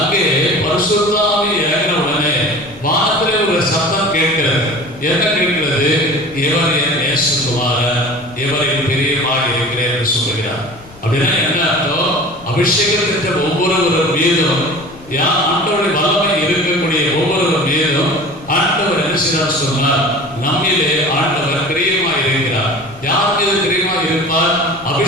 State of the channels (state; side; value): noise; left; rumble, 22 dB below the sound